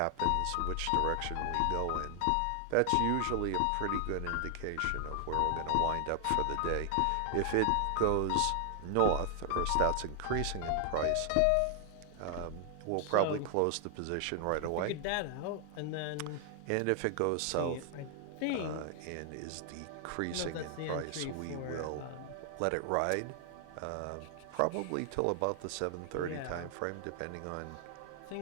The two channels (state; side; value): different; both; correlation 0.00